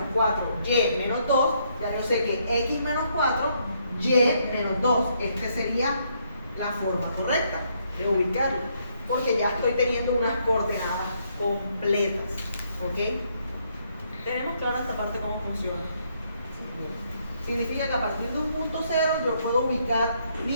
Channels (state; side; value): inverted; both; correlation -0.72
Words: 4, Y menos 2, ya yo sé que X menos 4, Y menos 2. Esta sería la forma correcta de ubicarlo. Porque ya estoy teniendo unas coordenadas completas. ¿Ok? ¿Tenemos clara esta parte cómo funciona? Significa que a partir de un punto cero yo puedo ubicar